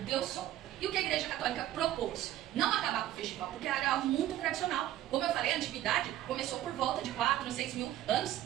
Deus Sol. E o que a Igreja Católica propôs? Não acabar com o festival, porque era algo muito tradicional. Como eu falei, a antiguidade começou por volta de 4, 6 mil anos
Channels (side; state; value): left; quieter; 13.3 dB